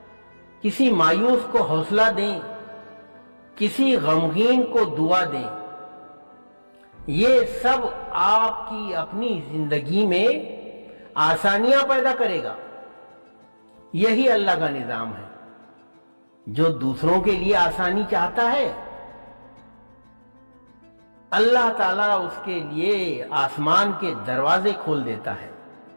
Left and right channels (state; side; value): inverted; both; correlation -1.00